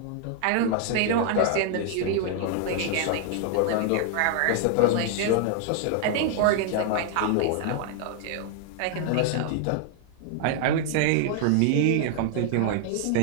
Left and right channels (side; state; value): both; different; correlation 0.00